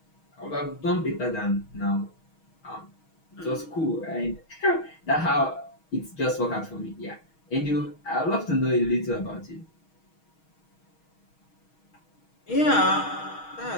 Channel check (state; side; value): late; right; 6.3 ms